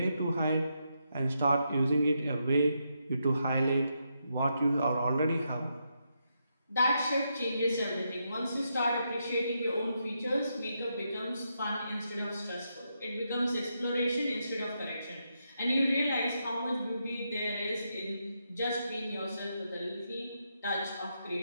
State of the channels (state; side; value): inverted; both; correlation -0.82